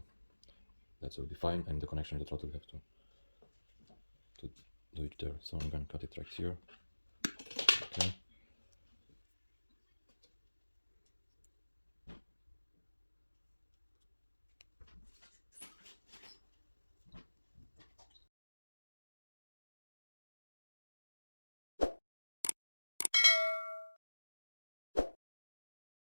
that will be fine, and the connection with the throttle will have to do it there. So I'm gonna cut it right here. Okay.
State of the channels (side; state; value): both; inverted; correlation -1.00